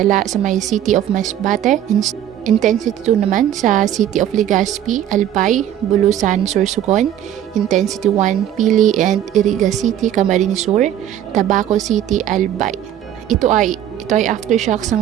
sa may City of Masbate. Intensity 2 naman sa City of Legazpi, Albay, Bulusan, Sorsogon. Intensity 1, Pili and Iriga City, Camarines Sur, Tabaco City, Albay. Ito ay aftershocks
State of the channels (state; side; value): quieter; left; 11.0 dB